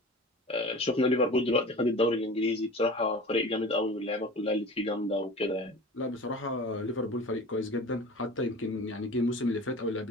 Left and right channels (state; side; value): normal; both; correlation 0.37